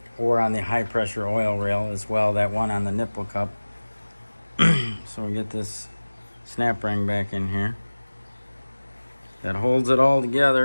Or on the high pressure oil rail as well, that one on the nipple cup. So we get this snap ring back in here. That holds it all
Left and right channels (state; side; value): inverted; both; correlation -1.00